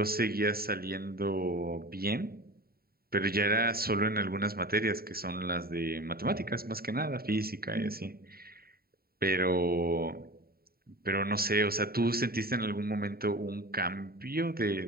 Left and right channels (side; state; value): left; late; 0.44 ms